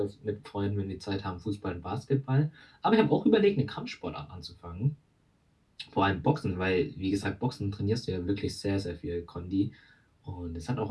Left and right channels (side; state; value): both; identical; correlation 1.00